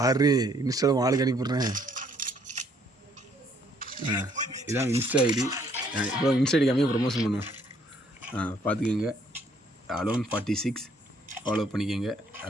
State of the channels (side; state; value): both; normal; correlation 0.66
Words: இன்ஸ்டாவில் ஆளுக்கு அனுப்பிடுறேன். இதான் இன்ஸ்டா ஐடி. இப்போ இன்ஸ்டா ஐடி கம்மியாக ப்ரொமோஷன் பண்ணுவேன். பார்த்துக்கோங்க. அலோன் 46 ஃபாலோ பண்ணிக்கோங்க.